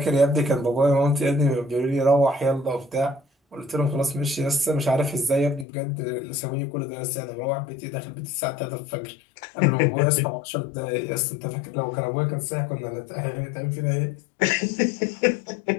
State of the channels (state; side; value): drops out; right; at 5.7 s